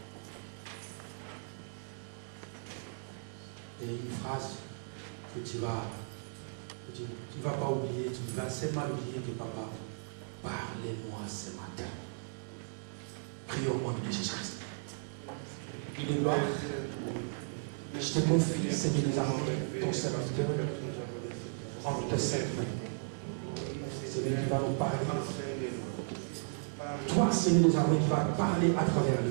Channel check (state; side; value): silent; left; digital silence